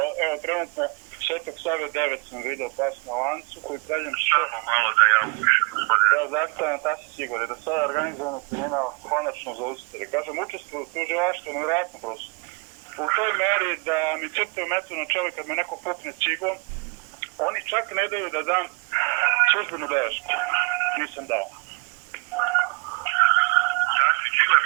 evo trenutno Svetog Save 9 sam video pas na lancu koji pravljam Samo malo da ja upišem, gospodine. Ja zastavljam Tasić Igor, da sada organizovano kriminal konačno zaustavi. Kažem, učestvuju u tužilaštvu, nevjerojatno prosto. U toj meri da mi crtaju metu na čelo kad me neko pukne cigom, oni čak ne daju da dam službenu belešku. Nisam dao. Tasić Igor?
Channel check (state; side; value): quieter; left; 32.4 dB